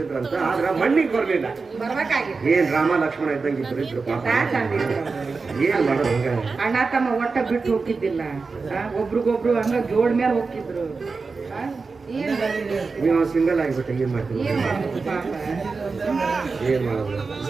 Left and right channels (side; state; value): left; quieter; 4.4 dB